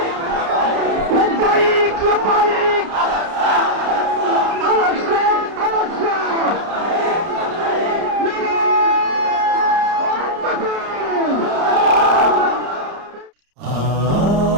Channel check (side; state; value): left; late; 30 ms